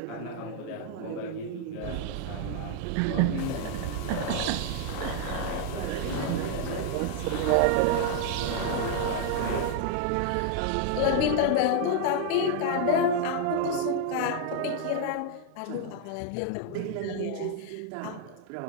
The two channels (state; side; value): different; both; correlation 0.00